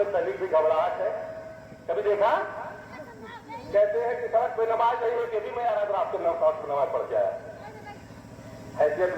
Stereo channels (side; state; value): both; identical; correlation 1.00